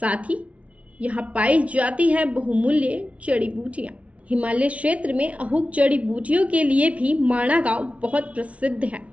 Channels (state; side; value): late; left; 0.064 ms